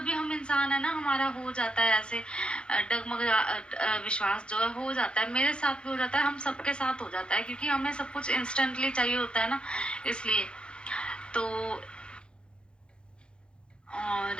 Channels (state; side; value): late; right; 0.054 ms